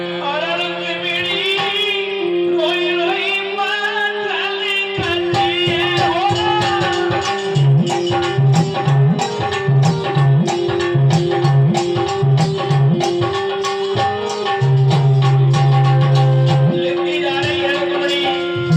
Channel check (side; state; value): both; identical; correlation 1.00